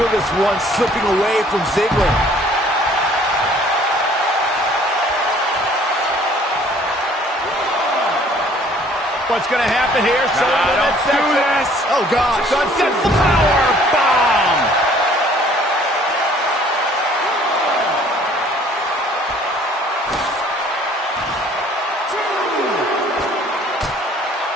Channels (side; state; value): both; normal; correlation 0.56